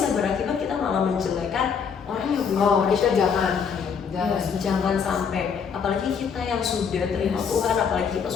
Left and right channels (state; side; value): quieter; right; 6.5 dB